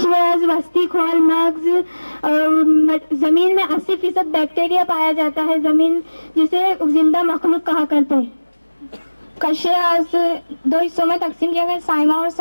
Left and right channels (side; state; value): both; inverted; correlation -1.00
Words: وسطی کھول، مغز. زمین میں 80% بیکٹیریا پایا جاتا ہے، زمین جسے زندہ مخلوق کہا کرتے ہیں. قشرز 2 حصوں میں تقسیم کیا گیا، سائمہ اور